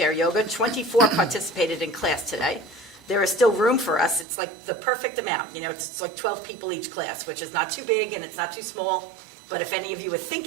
Yoga. 24 participated in class today. There is still room for us. It's like the perfect amount. You know, it's like 12 people each class, which is not too big and it's not too small. But if any of you are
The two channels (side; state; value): left; drops out; at 4.2 s